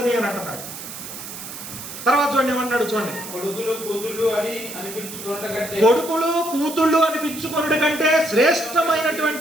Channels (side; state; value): right; noise; hiss, 11 dB below the sound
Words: అంటున్నాడు. తర్వాత చూడండి ఏమన్నాడు చూడండి, కొడుకులు కూతుళ్ళు అనిపించుకొనుట కంటే